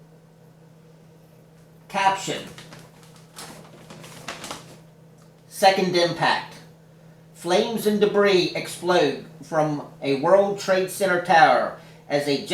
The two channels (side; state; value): both; identical; correlation 1.00